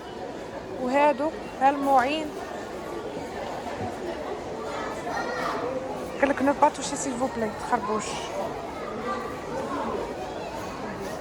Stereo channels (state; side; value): identical; both; correlation 1.00